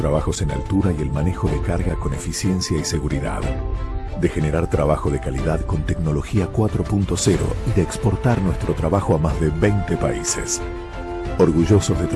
en altura y el manejo de carga con eficiencia y seguridad. De generar trabajo de calidad con tecnología 4.0 y de exportar nuestro trabajo a más de 20 países. Orgullosos de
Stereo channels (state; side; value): identical; both; correlation 1.00